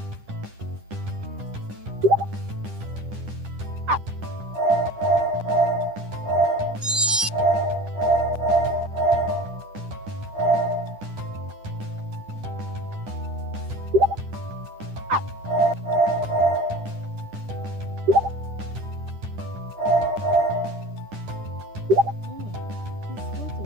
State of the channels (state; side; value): late; left; 10 ms